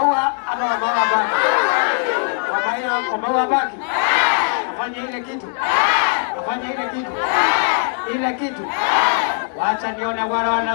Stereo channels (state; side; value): silent; right; 62 dB below the other